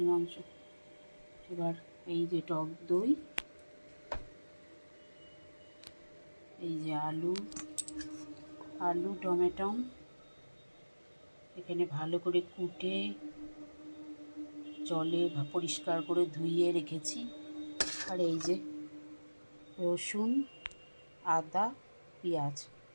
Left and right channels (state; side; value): inverted; both; correlation -1.00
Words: মাংস। এবার এই যে টক দই, এই যে আলু টমেটো এখানে ভালো করে কুটে জলে পরিষ্কার করে ধুইয়ে রেখেছি। আর এই যে রসুন, আদা, পেঁয়াজ